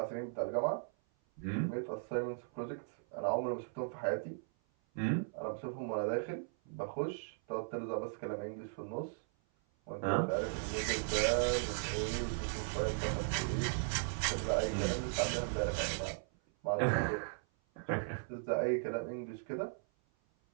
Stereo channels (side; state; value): left; silent; 53 dB below the other